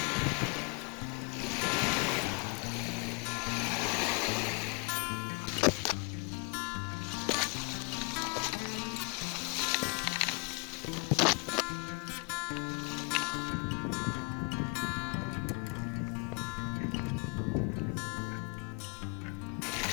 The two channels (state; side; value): quieter; right; 32.9 dB